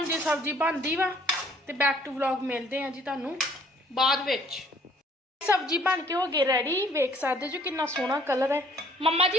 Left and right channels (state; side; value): normal; both; correlation 0.60